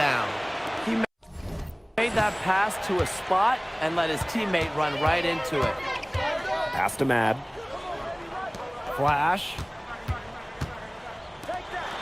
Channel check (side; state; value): both; identical; correlation 1.00